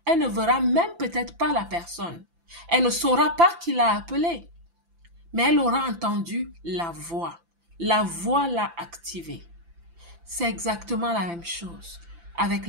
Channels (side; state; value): left; late; 5.9 ms